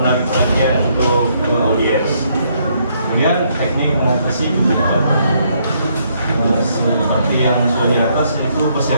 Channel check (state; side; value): inverted; both; correlation -0.71